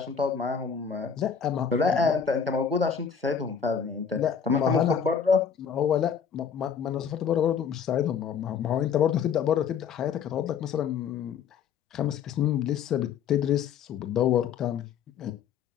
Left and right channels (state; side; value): quieter; right; 7.1 dB